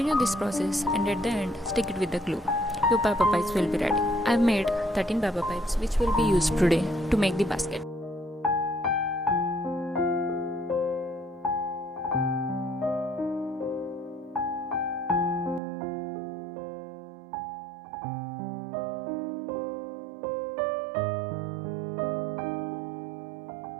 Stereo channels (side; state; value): left; drops out; at 15.6 s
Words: this process and at the end stick it with the glue. Your paper pipes will be ready. I've made 13 paper pipes which will be used today to make the basket.